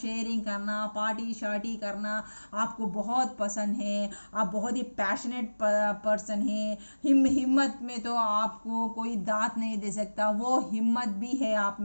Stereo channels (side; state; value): both; inverted; correlation -1.00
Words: करना, पार्टी शार्टी करना आपको बहुत पसंद है। आप बहुत ही पैशनेट पर्सन हैं। हिम्मत में तो आपको कोई दांत नहीं दे सकता, वो हिम्मत भी है आप